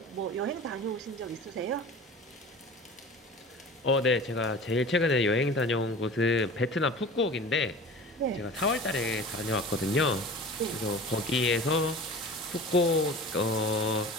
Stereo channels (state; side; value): normal; both; correlation 0.38